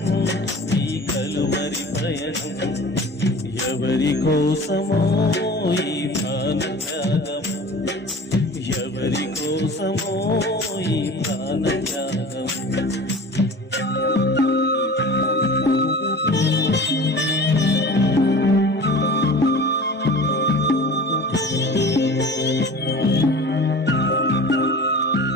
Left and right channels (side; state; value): both; normal; correlation 0.39